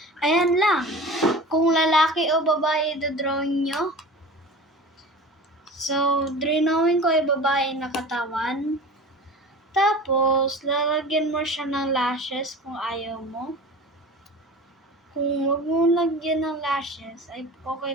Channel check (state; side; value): normal; both; correlation 0.37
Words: Ayan lang. Kung lalaki o babae dodrawing nyo. So, drawing ko ay babae na katawan. Tapos, lalagyan mo siya ng lashes kung ayaw mo. Kung wag mo lagyan ng lashes, ay okay